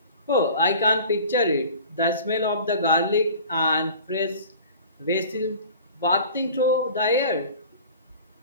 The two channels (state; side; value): inverted; both; correlation -0.43